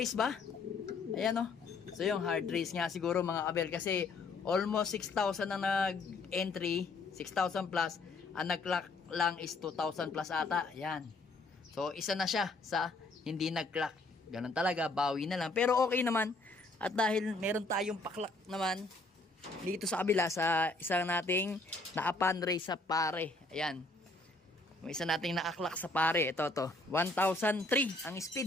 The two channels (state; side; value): quieter; right; 3.3 dB